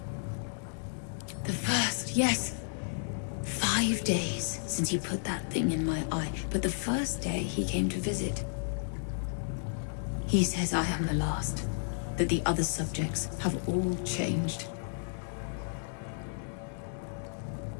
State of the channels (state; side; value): silent; right; digital silence